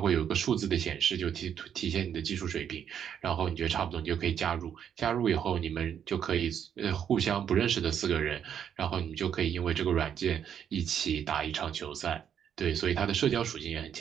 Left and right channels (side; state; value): left; quieter; 8.7 dB